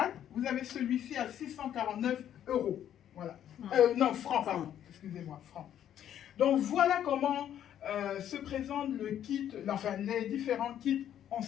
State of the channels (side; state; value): right; quieter; 10.4 dB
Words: vous avez celui-ci à 649 €. Voilà. Non, francs, pardon. Excusez-moi, francs. Donc, voilà comment se présente le kit, enfin, les différents kits en